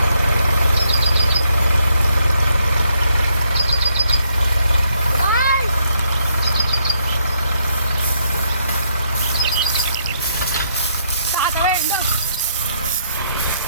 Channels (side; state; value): both; inverted; correlation -0.73